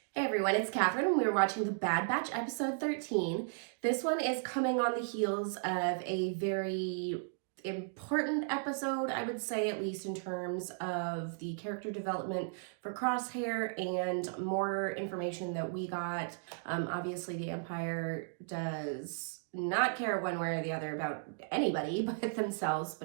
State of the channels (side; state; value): left; silent; digital silence